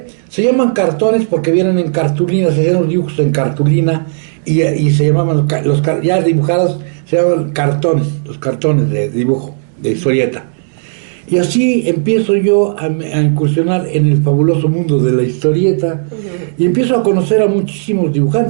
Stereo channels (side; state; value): left; silent; digital silence